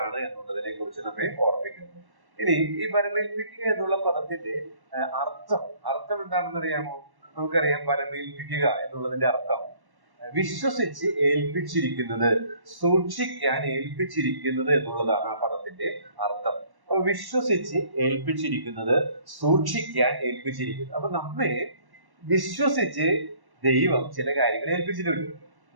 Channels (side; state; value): left; late; 1.1 ms